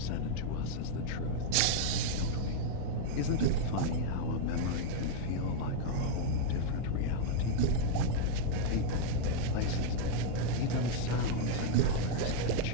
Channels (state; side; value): different; both; correlation -0.01